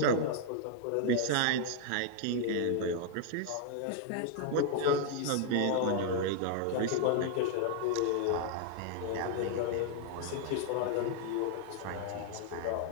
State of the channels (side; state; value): both; different; correlation 0.00